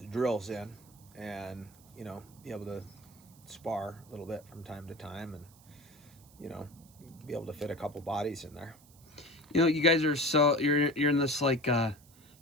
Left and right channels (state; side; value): noise; right; hiss, 26 dB below the sound